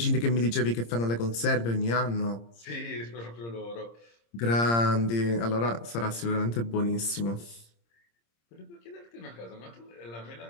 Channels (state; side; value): late; right; 26 ms